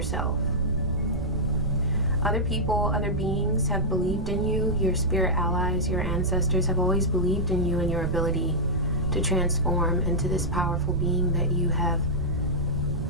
Other people, other beings have believed in you. Your spirit allies, your ancestors have always believed in you and your ability to transform into this powerful being that you have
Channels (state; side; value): noise; right; rumble, 4 dB below the sound